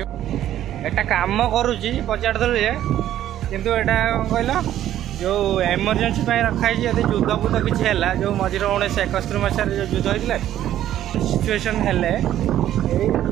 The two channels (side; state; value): left; quieter; 12.1 dB